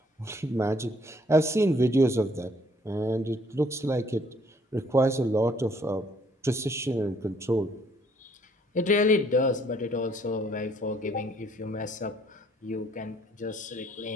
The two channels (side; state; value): both; normal; correlation 0.64